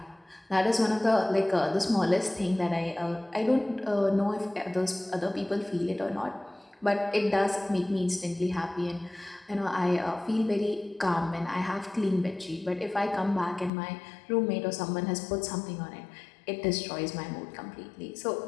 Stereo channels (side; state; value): right; drops out; at 13.7 s